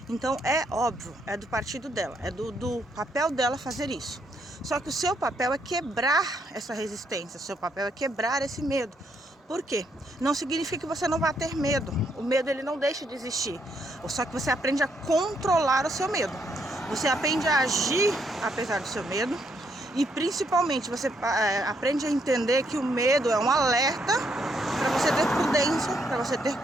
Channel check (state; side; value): normal; both; correlation 0.74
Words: Então é óbvio, é do partido dela, é do papel dela fazer isso. Só que o seu papel é quebrar essa resistência, o seu papel é quebrar esse medo. Por quê? Não significa que você não vai ter medo. O medo, ele não deixa de existir. Só que você aprende a controlar o seu medo. Você aprende a agir apesar do seu medo. E principalmente você aprende a entender que o medo é um alerta para você ter prudência, para você ter